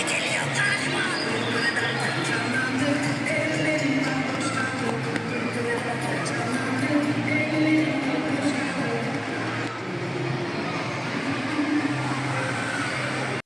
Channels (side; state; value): both; identical; correlation 1.00